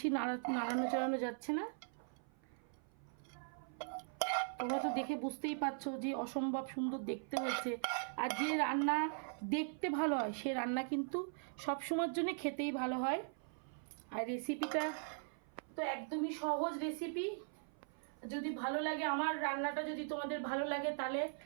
নাড়ানো চাড়ানো যাচ্ছে না। তোমরা তো দেখে বুঝতেই পারছো যে অসম্ভব সুন্দর দেখতে হয়েছে। আর যে রান্না দেখতে ভালো হয় সে রান্না কিন্তু সব সময়ের জন্য খেতেই ভালো হয়। আর রেসিপিটা তো একদমই সহজ রেসিপি। যদি ভালো লাগে আমার রান্নাটা, যদি তোমাদের ভালো লাগে তাহলে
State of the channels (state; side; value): silent; left; 51 dB below the other